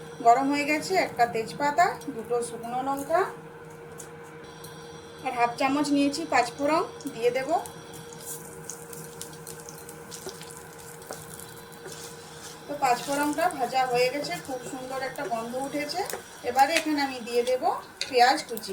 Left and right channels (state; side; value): identical; both; correlation 1.00